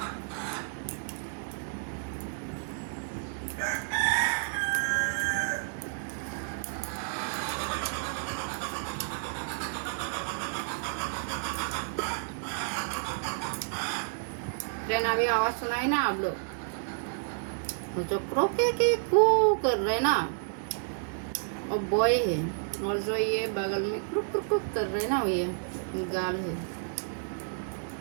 ट्रेन अभी आवाज सुनाई ना आप लोग, जो क्रोके के कू कर रहे ना और बॉय है, और जो ये बगल में क्रुक क्रुक क्रुक कर रहे ना ये गाल है।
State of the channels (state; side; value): silent; left; digital silence